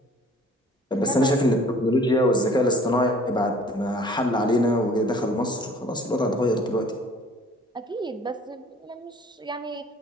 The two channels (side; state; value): both; normal; correlation 0.52